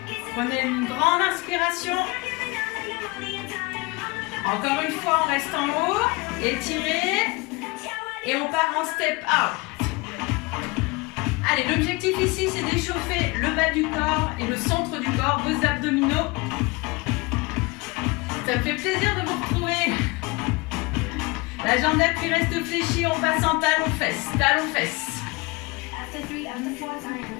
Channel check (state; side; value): quieter; right; 24.7 dB